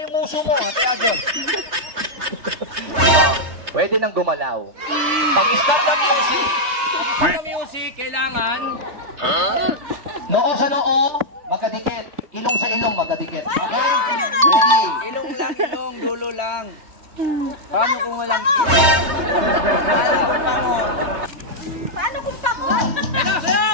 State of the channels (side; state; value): left; late; 3.3 ms